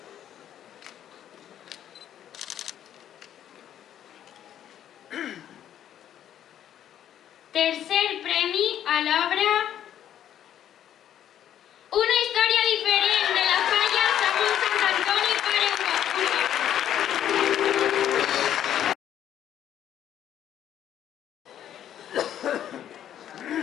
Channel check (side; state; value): right; quieter; 10.6 dB